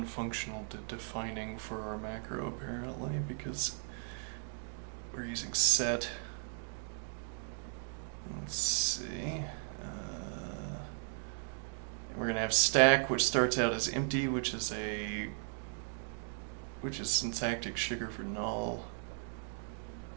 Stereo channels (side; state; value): left; silent; 53 dB below the other